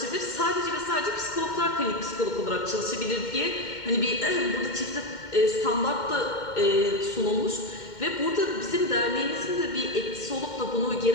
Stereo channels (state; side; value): late; right; 2.1 ms